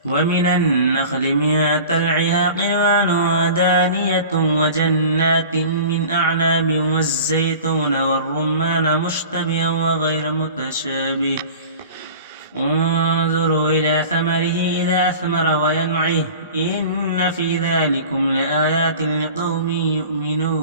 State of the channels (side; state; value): both; inverted; correlation -0.40